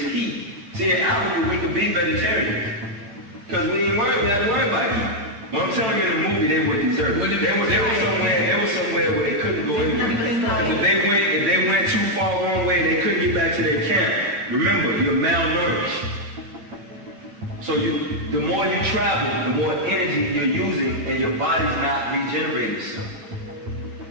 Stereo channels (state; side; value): late; left; 9.0 ms